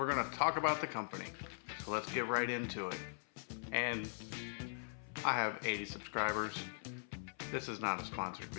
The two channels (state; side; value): silent; right; 50 dB below the other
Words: gonna talk about the company. So let's get right into it. And I have 80 subscribers. This is not a sponsored